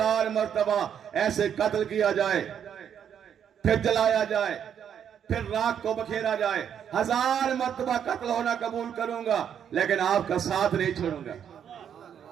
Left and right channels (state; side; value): quieter; left; 8.6 dB